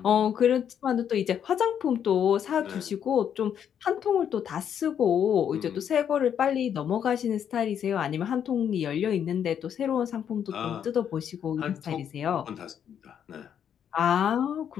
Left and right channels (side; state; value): right; quieter; 8.7 dB